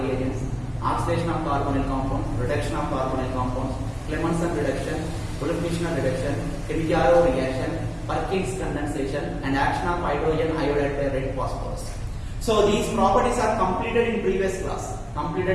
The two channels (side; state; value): both; identical; correlation 1.00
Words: reagents, oxidation of carbonyl compounds, reduction of carbonyl compounds, Clemmensen reduction, Olefinish reduction, Kilimanjaro reaction, Perkins condensation, and action of hydrogen iodide by red phosphorus. So these properties are completed in previous class.